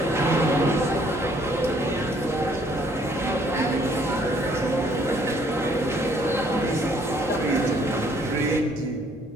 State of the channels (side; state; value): both; normal; correlation 0.64